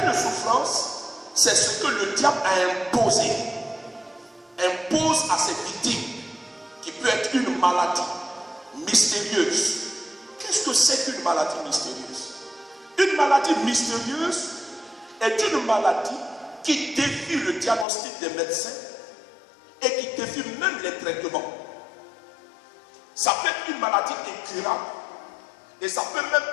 souffrance, c'est ce que le diable a imposé. Impose à ses victimes, qui peut être une maladie mystérieuse. Qu'est-ce que c'est qu'une maladie mystérieuse? Une maladie mystérieuse est une maladie qui défie le diagnostic des médecins et qui défie même les traitements. Ça peut être une maladie incurable et ça peut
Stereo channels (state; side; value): drops out; right; at 17.9 s